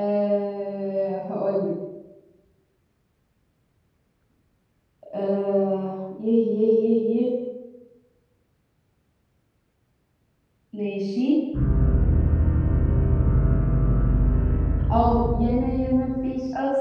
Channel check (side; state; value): both; identical; correlation 1.00